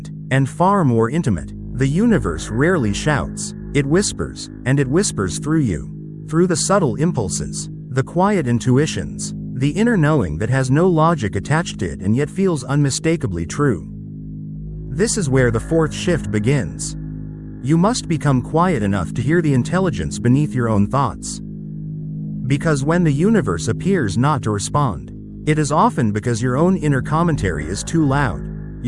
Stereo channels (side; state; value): both; identical; correlation 1.00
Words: and far more intimate. The universe rarely shouts, it whispers, and it whispers through you. Through the subtle impulses, the quiet intuitions, the inner knowing that has no logic attached to it and yet feels unmistakably true. This is where the fourth shift begins. You must become quiet enough to hear the intelligence beneath your own thoughts. Because when the universe appears not to respond, it is often because your own inner commentary is too loud.